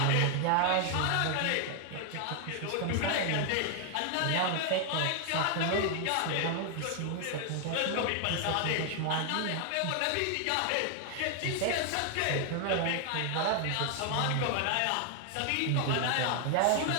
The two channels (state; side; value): different; both; correlation 0.00